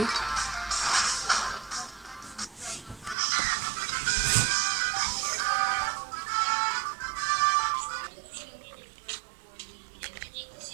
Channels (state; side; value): drops out; left; at 3.2 s